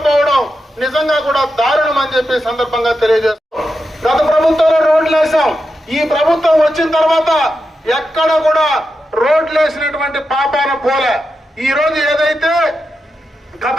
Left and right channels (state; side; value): normal; both; correlation 0.88